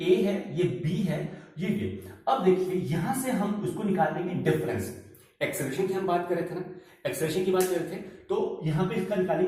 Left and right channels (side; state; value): both; identical; correlation 1.00